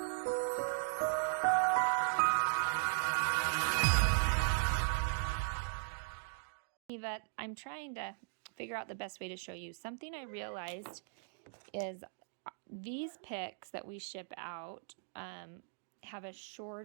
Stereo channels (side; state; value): left; silent; digital silence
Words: I'm trying to figure out the best way to show you. Something I realized is these picks that we ship out have a